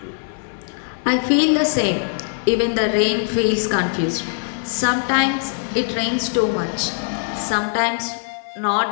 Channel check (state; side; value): silent; right; 63 dB below the other